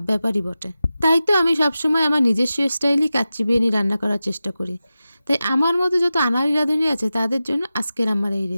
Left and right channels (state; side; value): inverted; both; correlation -0.93